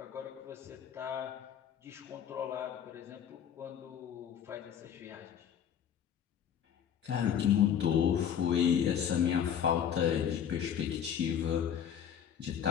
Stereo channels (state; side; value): quieter; right; 8.7 dB